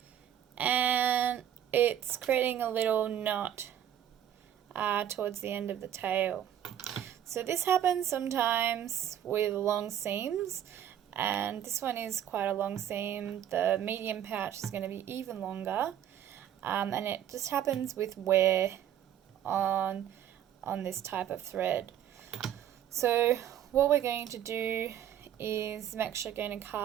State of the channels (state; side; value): quieter; left; 10.5 dB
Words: and it's creating a little knot towards the end of the tail. So this happens sometimes with long seams, and this one is quite a long seam. The medium pouch is going to be even longer, and it just happens with wear on this type of thread. So what we're going to do is I'm actually going to